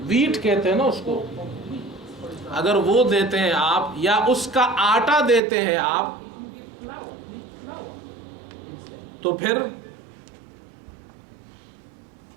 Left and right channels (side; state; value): left; drops out; at 5.4 s